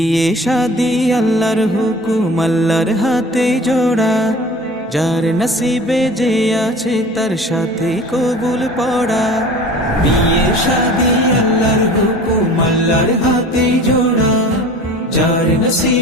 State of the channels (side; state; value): both; normal; correlation 0.42